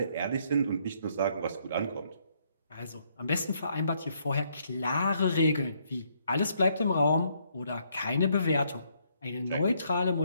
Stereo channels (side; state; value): both; inverted; correlation -0.71